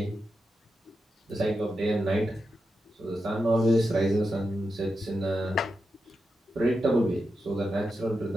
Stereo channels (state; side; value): normal; both; correlation 0.88